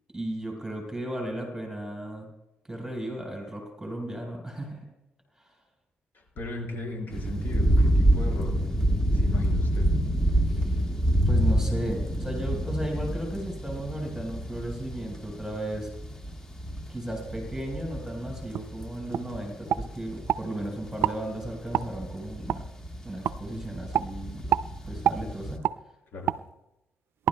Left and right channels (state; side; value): normal; both; correlation 0.79